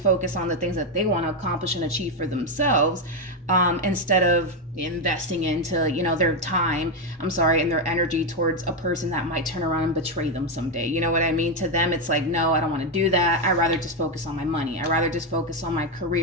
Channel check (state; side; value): normal; both; correlation 0.06